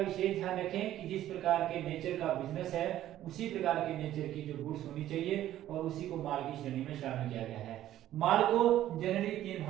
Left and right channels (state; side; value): quieter; left; 12.9 dB